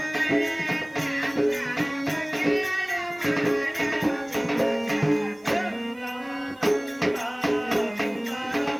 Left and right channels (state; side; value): noise; right; hiss, 30 dB below the sound